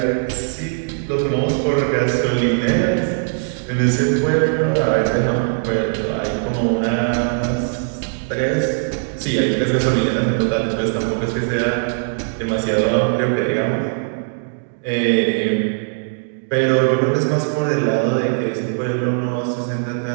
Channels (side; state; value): left; silent; digital silence